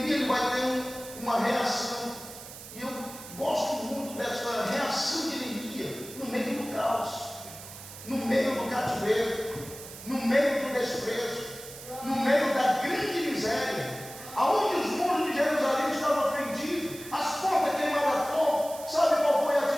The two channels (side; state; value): right; noise; hiss, 14 dB below the sound